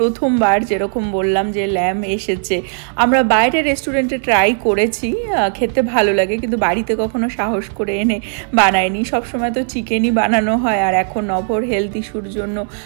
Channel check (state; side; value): silent; left; digital silence